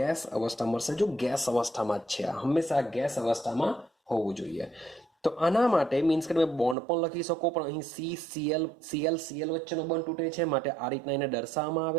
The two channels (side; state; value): left; drops out; at 6.8 s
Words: અવસ્થા મળશે. જો ગેસ અવસ્થામાં જ છે, હંમેશા ગેસ અવસ્થામાં હોવું જોઈએ. તો આના માટે મીન્સ કે તમે બોન્ડ પણ લખી શકો, પણ અહીં Cl વચ્ચેનો બંધ તૂટે છે, માટે આ રીતના એને દર્શાવવામાં